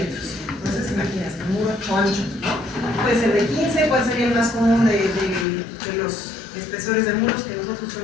Entonces, imagínense, un muro ancho, ¿no? Puede ser de 15, ¿cuál sería el más común de los espesores de muros que nosotros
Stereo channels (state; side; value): drops out; right; at 5.5 s